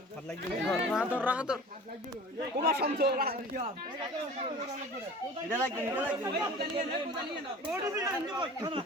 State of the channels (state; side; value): normal; both; correlation 0.41